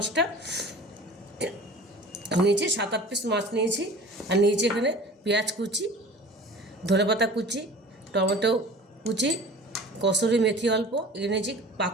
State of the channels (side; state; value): both; normal; correlation 0.41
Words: নিয়েছি 7-8 পিস মাছ নিয়েছি। আর নিয়েছি এখানে পেঁয়াজ কুচি, ধনেপাতা কুচি, টমেটো কুচি, কসুরি মেথি অল্প, এখানে নিয়েছি